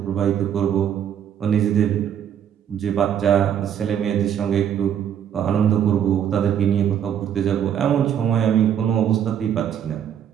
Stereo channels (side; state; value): left; quieter; 9.2 dB